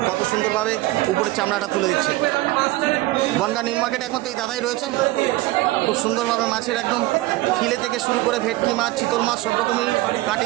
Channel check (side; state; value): left; quieter; 18.6 dB